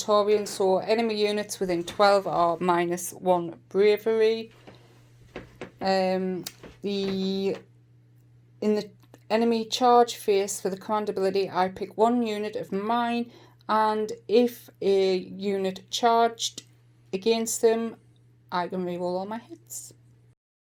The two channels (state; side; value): identical; both; correlation 1.00